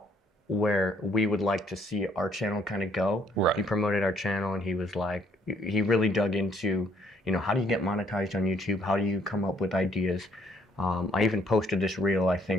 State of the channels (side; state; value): both; normal; correlation 0.65